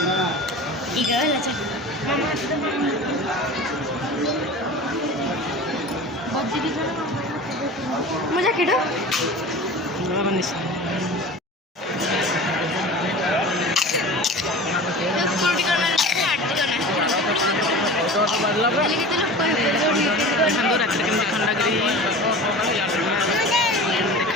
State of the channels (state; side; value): normal; both; correlation 0.36